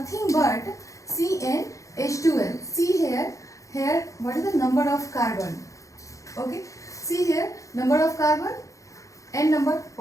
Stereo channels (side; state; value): right; late; 0.15 ms